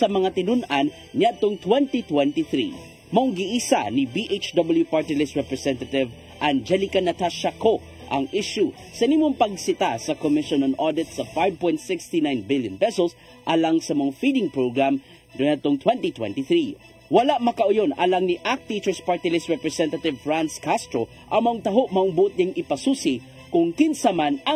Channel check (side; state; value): both; identical; correlation 1.00